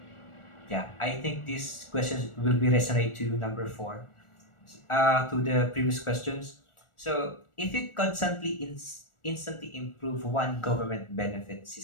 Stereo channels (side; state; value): right; late; 1.4 ms